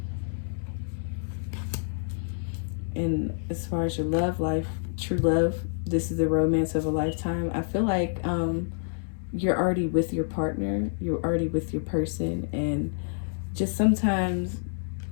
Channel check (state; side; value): silent; right; digital silence